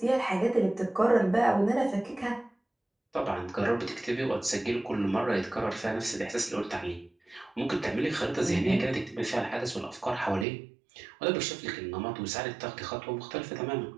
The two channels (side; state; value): left; drops out; at 10.5 s